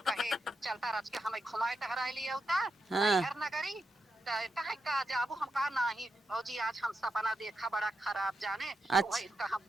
कहे चलता रच के हमें घुमाए टहराए लिए होता। हाँ। घर नगरी कहे का जाबू हम कहा नहीं भौजी आज हम सपना देखा बड़ा खराब जाने। अच्छा। तो हम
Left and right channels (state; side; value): normal; both; correlation 0.85